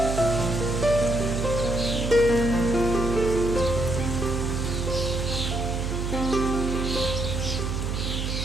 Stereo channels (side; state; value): right; noise; hum, 2 dB below the sound